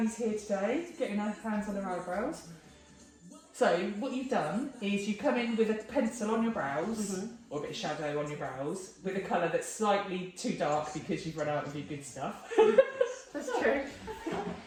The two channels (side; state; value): both; identical; correlation 1.00